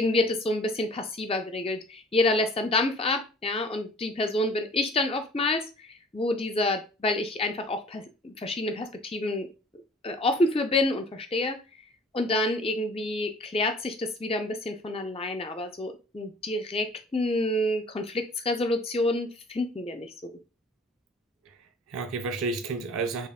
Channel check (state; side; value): normal; both; correlation 0.49